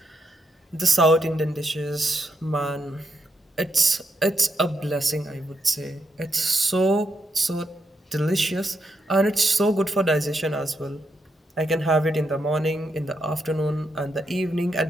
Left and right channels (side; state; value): both; normal; correlation 0.81